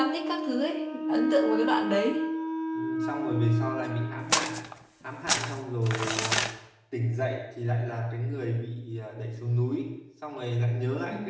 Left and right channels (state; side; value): identical; both; correlation 1.00